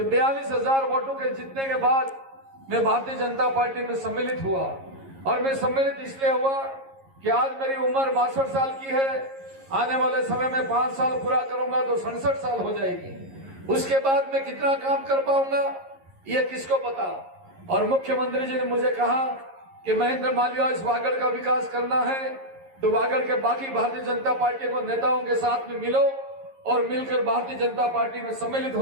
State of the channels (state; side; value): late; left; 11 ms